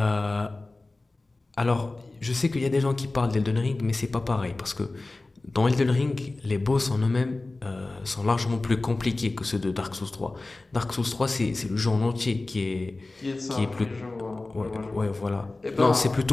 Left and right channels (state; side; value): quieter; right; 3.2 dB